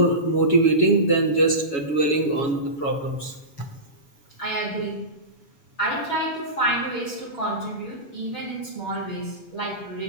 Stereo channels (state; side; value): late; right; 7.1 ms